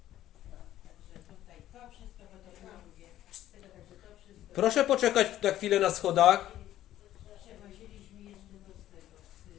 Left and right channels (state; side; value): quieter; right; 13.0 dB